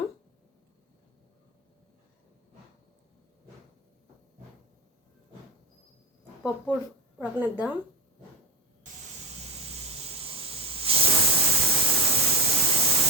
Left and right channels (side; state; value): both; normal; correlation 0.25